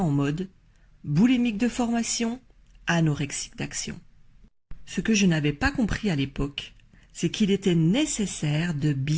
mode boulimique de formation, anorexique d'action. Ce que je n'avais pas compris à l'époque, c'est qu'il était nécessaire de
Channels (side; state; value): both; identical; correlation 1.00